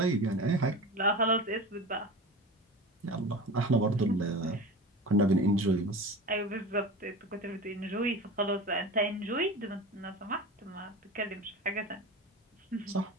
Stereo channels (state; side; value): normal; both; correlation 0.31